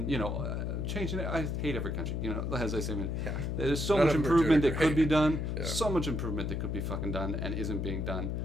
it. I hate every country, as I say. There's so much improvement that could be done, so much improvement that could be fucking done and isn't being done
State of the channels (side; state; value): left; noise; hum, 1 dB below the sound